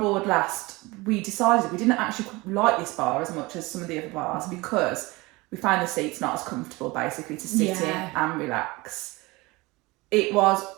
last, we decided we didn't actually like this bar as much as some of the other bars because we found the seats not as comfortable basically to sit in and relax. It was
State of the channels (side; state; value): left; quieter; 22.8 dB